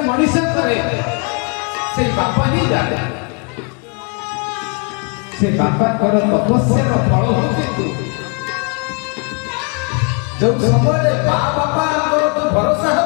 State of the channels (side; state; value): right; quieter; 36.2 dB